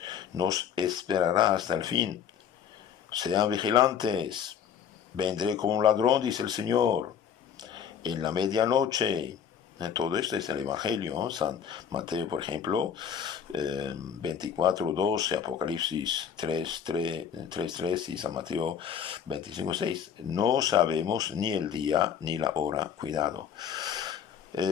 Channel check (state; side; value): quieter; right; 8.3 dB